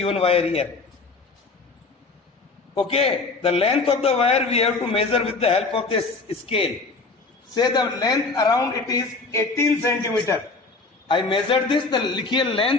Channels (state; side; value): quieter; right; 3.8 dB